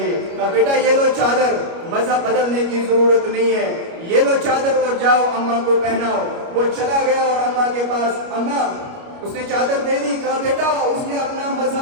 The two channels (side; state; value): left; late; 29 ms